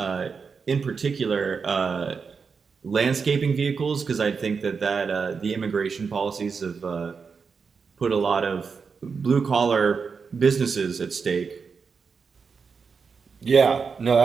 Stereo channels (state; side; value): quieter; left; 5.5 dB